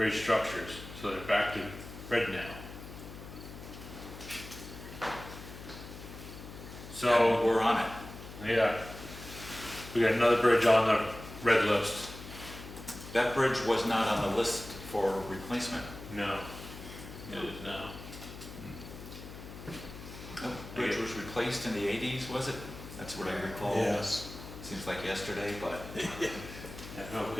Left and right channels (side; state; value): left; noise; hum, 13 dB below the sound